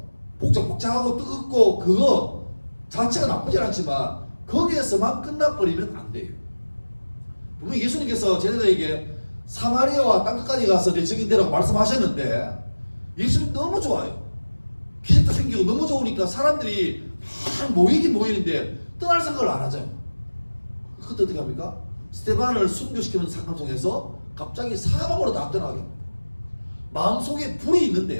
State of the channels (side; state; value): both; inverted; correlation -1.00